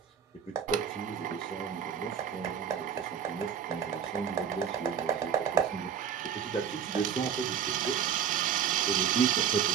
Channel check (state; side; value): quieter; left; 8.0 dB